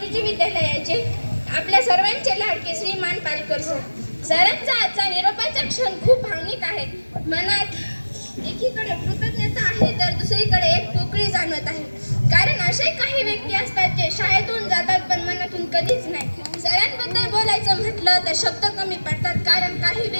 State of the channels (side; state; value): both; inverted; correlation -1.00